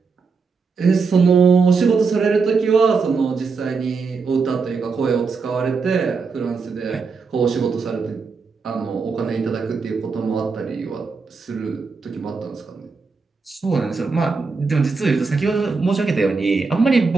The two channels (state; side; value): quieter; left; 4.8 dB